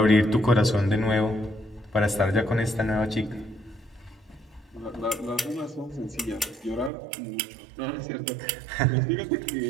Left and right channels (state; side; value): drops out; left; at 6.9 s